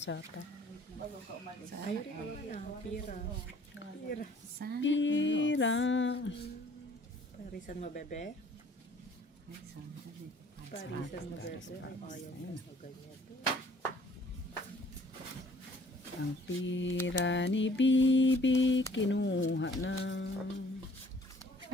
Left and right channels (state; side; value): normal; both; correlation 0.56